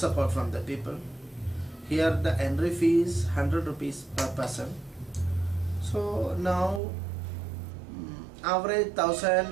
from the people. Here the entry fee is 100 rupees per person. So now average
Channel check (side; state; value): left; drops out; at 6.8 s